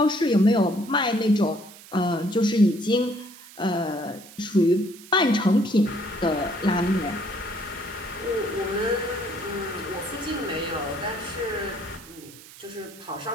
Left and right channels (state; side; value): noise; right; hiss, 19 dB below the sound